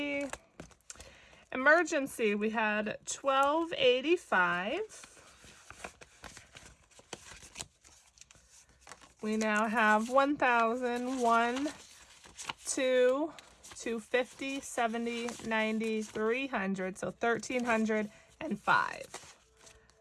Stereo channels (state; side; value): identical; both; correlation 1.00